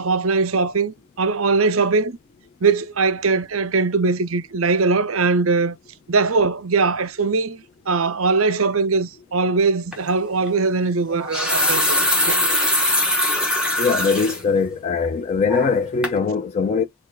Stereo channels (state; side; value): normal; both; correlation -0.14